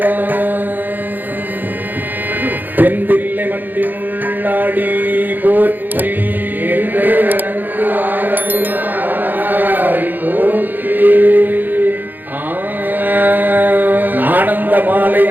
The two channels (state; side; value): late; left; 0.088 ms